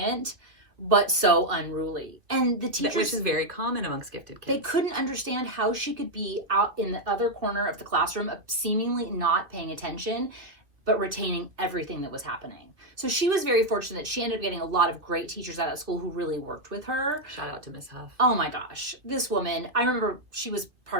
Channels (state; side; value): late; left; 2.4 ms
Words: but so unruly. And the teachers, which is very common amongst gifted kids. They couldn't understand how she could be out in the other corner of the classroom, seemingly not paying attention, but retaining everything that was happening. So she was very fortunate. She ended up getting a lot of great teachers out at school who really worked with her. Shout out to Miss Huff. Oh my gosh. This woman, I remember she was